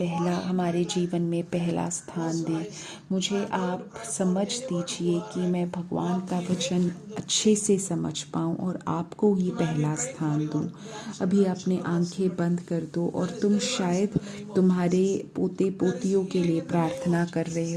जीवन में पहला स्थान दें। मुझे आप समझ दीजिए कि मैं भगवान का वचन अच्छे से समझ पाऊँ और आपको ही पहला स्थान दूँ। अभी अपने आंखें बंद कर दो और तुम शायद तुम्हारे पोते पोतियों के लिए प्रार्थना कर रहे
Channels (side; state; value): both; identical; correlation 1.00